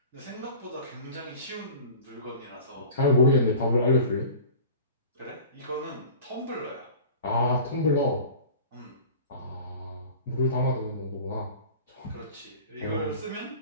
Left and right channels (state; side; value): inverted; both; correlation -0.40